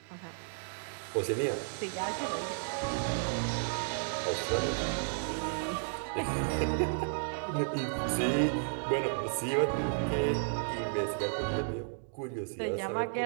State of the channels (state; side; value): silent; left; digital silence